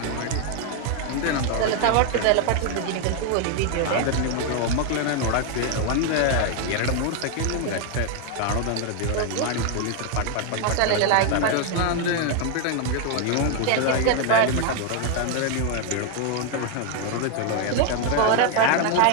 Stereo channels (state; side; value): different; both; correlation 0.01